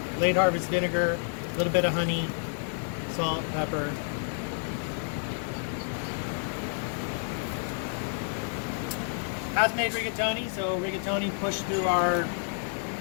late harvest vinegar, a little bit of honey, salt, pepper. House-made rigatoni. So rigatoni pushed through our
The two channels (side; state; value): right; silent; 58 dB below the other